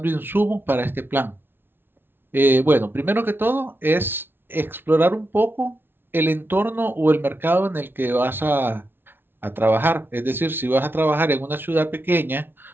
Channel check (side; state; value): left; late; 0.10 ms